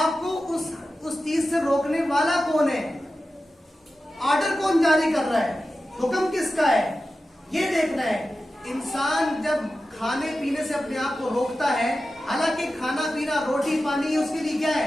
उस चीज से रोकने वाला कौन है, ऑर्डर कौन जारी कर रहा है, हुक्म किसका है, ये देखना है। इंसान जब खाने पीने से अपने आप को रोकता है, हालांकि खाना पीना रोटी पानी उसके लिए क्या है?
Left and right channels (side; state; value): both; normal; correlation 0.93